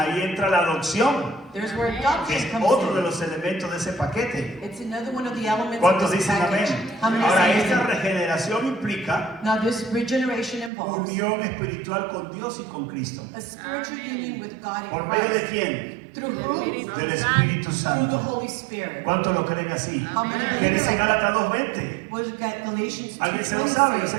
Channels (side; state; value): left; drops out; at 10.7 s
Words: entra la adopción, There's where que adoption es comes otro de in. los elementos de ese paquete. It's another one of the elements of ¿Cuántos this dicen package. amén? How many Ahora, say esta amen? regeneración implica Now this regeneration involves unión espiritual con Dios y con Cristo. a spiritual union with God ¿Por and medio de Christ. quién? Through who? Del Espíritu Through the Santo. Holy Spirit. ¿Cuántos lo creen así? How many ¿Qué believe dice it? Gálatas 2:20? We've got Galatians ¿Alguien se lo 2:20 sabe? Yo sé